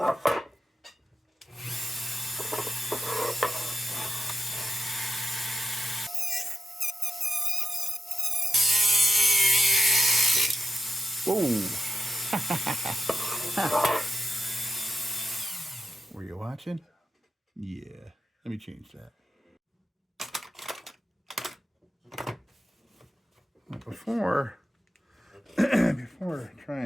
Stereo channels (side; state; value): both; normal; correlation 0.90